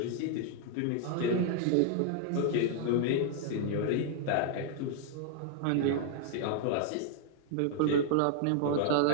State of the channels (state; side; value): different; both; correlation 0.00